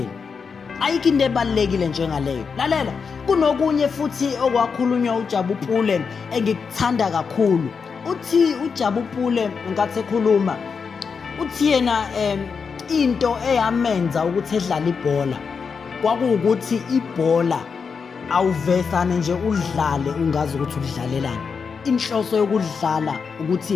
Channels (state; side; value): quieter; right; 5.7 dB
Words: Ayikho into ebalulekile njengaleyo. Lalela, kunokunye futhi okwakhulunywa uJabu Pule engikuthanda kakhulu. Uthi uJabu Pule nkathi ekhuluma uthi yena into eyamenza ukuthi edlale ibhola kwakuwukuthi ibhola awuvesane nje udlale ungazi ukuthi udlalelani. Inhloso yokudlala